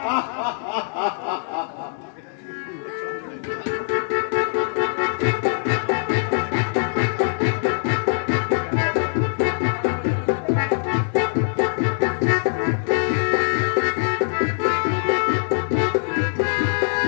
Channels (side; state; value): right; silent; digital silence